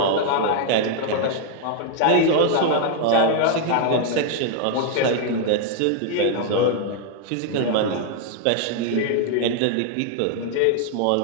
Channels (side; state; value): both; different; correlation 0.00